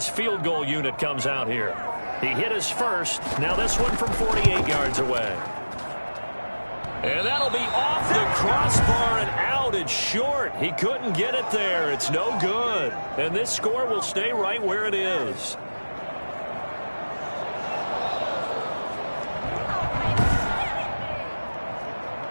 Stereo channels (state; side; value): inverted; both; correlation -1.00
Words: field goal unit comes out here. He hit his first. Now this one from 48 yards away. And that'll be off the crossbar and out. It's short. He couldn't get it there. It's no good. And this score will stay right where it is.